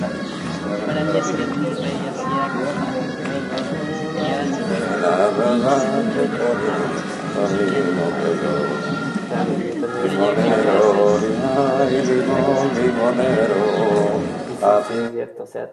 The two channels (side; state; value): both; identical; correlation 1.00